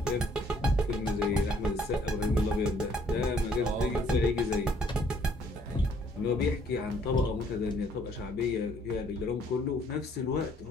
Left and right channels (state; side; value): normal; both; correlation 0.63